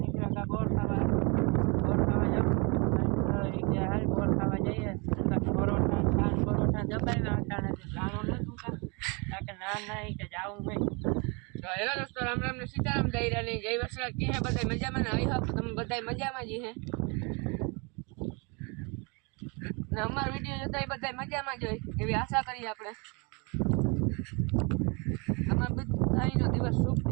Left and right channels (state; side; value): quieter; left; 31.2 dB